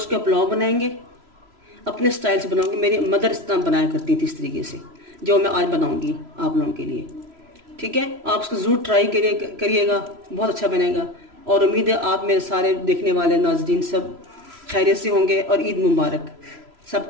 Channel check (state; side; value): late; left; 3.0 ms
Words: का पुलाव बनाएंगे। अपने स्टाइल से बनाऊंगी। मेरी मदर इस तरह बनाया करती थी, इस तरीके से, जो मैं आज बनाऊंगी आप लोगों के लिए। ठीक है, आप उसको ज़रूर ट्राई करिएगा, बहुत अच्छा बनेगा। और उम्मीद है आप मेरे सारे देखने वाले नाज़रीन सब खैरियत से होंगे और ईद मुबारक